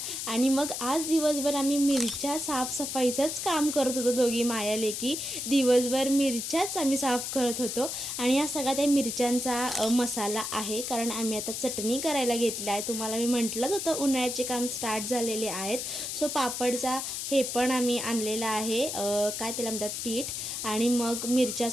आणि मग आज दिवसभर आम्ही मिरच्या साफसफाईचंच काम करत होतो, दोघी माया लेकी दिवसभर मिरच्याच आम्ही साफ करत होतो। आणि हा सगळा त्या मिरच्यांचा मसाला आहे, कारण आम्ही आता चटणी करायला घेतली आहे। तुम्हाला मी म्हटलंच होतं उन्हाळ्याचे काम स्टार्ट झालेले आहेत। सो पापडचा हे पण आम्ही आणलेला आहे, काय त्याला म्हणतात पीठ। आणि मग मिरच्या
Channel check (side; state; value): left; noise; hiss, 4 dB below the sound